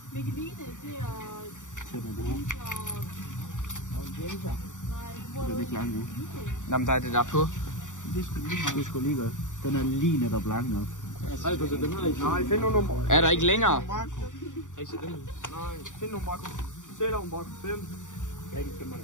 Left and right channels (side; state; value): right; late; 0.86 ms